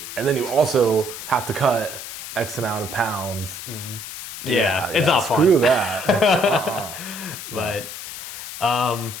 And then you also have to cut X amount of pounds. Yeah, it's not fun. Screw that. But,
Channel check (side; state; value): left; noise; hiss, 10 dB below the sound